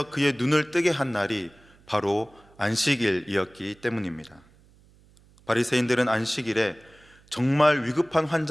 그의 눈을 뜨게 한 날이 바로 안식일이었기 때문입니다. 바리새인들은 안식일에 정말 위급한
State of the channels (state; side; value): noise; right; hum, 29 dB below the sound